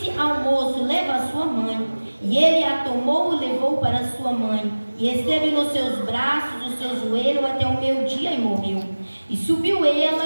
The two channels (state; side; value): inverted; both; correlation -1.00